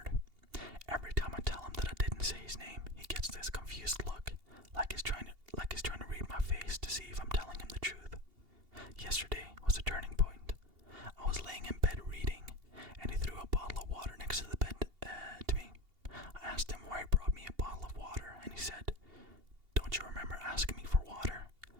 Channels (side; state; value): left; late; 2.8 ms